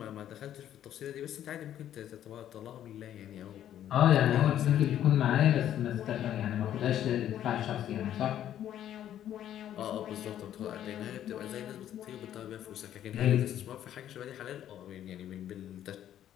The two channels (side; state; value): right; quieter; 11.1 dB